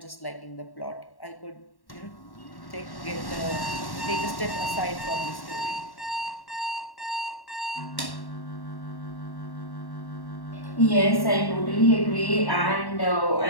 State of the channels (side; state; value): right; late; 1.1 ms